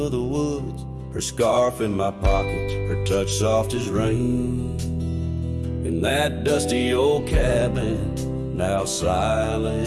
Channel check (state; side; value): identical; both; correlation 1.00